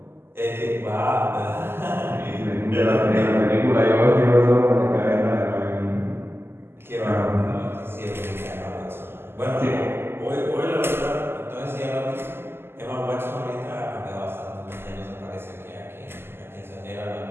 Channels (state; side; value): late; left; 0.12 ms